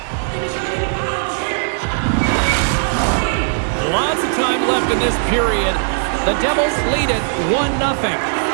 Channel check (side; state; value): left; silent; digital silence